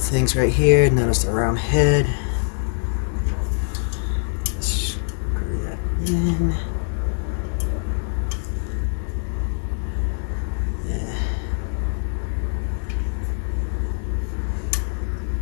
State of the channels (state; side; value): silent; right; 59 dB below the other